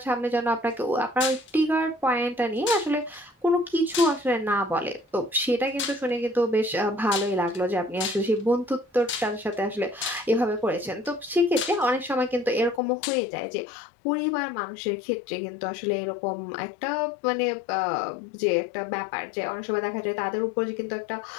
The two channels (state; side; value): drops out; right; at 12.8 s